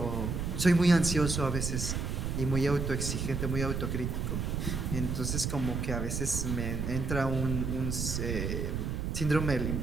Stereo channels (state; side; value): noise; right; rumble, 2 dB below the sound